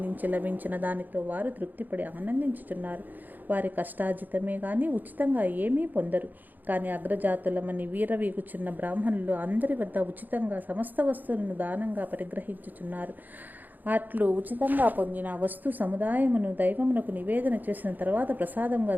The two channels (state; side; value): late; left; 0.085 ms